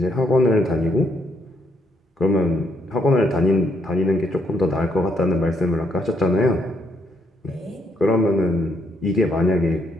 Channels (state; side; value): normal; both; correlation 0.73